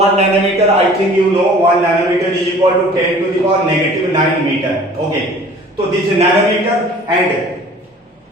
nanometer, I think you know, 1 nanometer is equal to 10 to the power negative 9 meter. Okay, so this is nanometer and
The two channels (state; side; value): normal; both; correlation 0.48